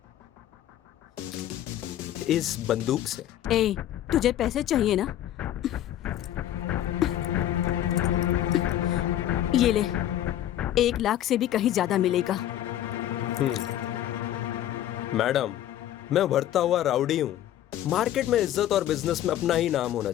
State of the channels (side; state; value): right; quieter; 12.1 dB